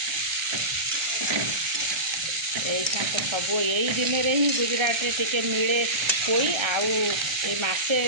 यही तो सब यही दिन में ही गुजरात रे टिके मिले पोई आउ मसे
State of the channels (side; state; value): left; late; 1.3 ms